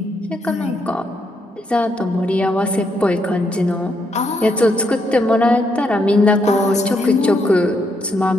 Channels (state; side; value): normal; both; correlation 0.77